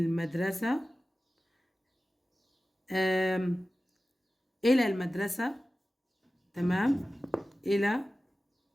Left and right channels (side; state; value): both; normal; correlation 0.95